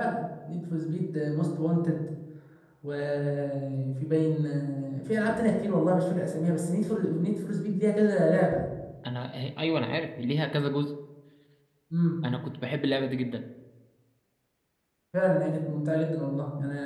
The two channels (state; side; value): identical; both; correlation 1.00